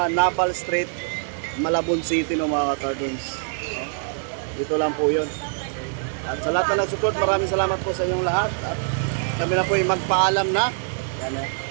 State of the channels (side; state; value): left; silent; 59 dB below the other